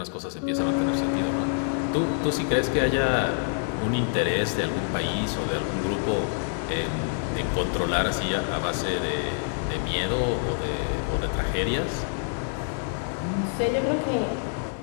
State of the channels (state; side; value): silent; right; digital silence